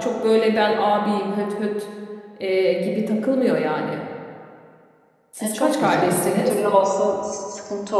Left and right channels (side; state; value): both; identical; correlation 1.00